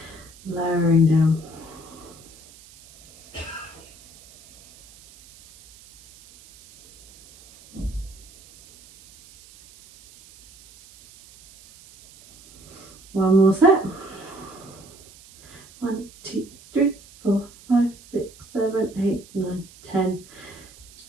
Lowering down. One more set. 1, 2, 3, 4, 5, 6, 7, 8, 9, 10.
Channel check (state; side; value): noise; right; hiss, 23 dB below the sound